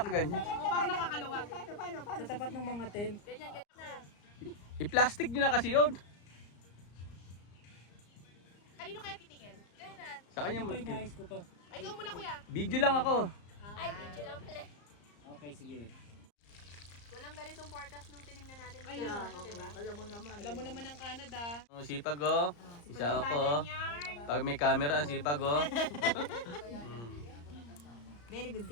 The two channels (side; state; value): right; late; 34 ms